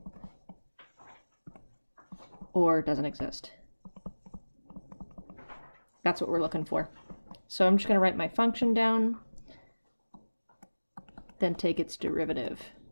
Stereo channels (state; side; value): inverted; both; correlation -1.00